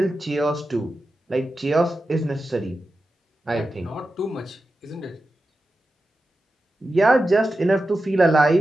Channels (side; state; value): both; normal; correlation 0.92